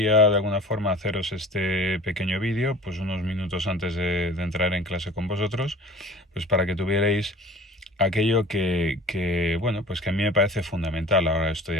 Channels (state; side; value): normal; both; correlation 0.43